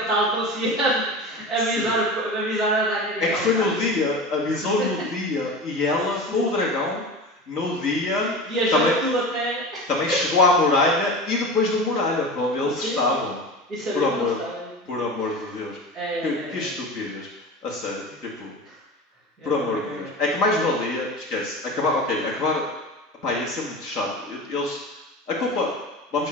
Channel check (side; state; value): both; normal; correlation 0.31